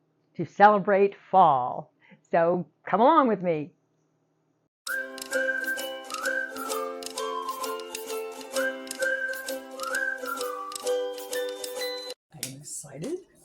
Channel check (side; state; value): both; identical; correlation 1.00